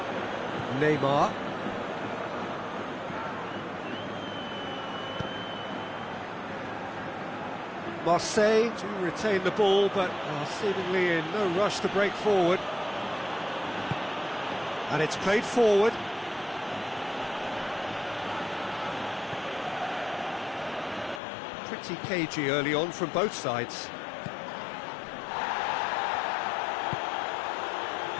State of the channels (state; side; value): drops out; right; at 21.2 s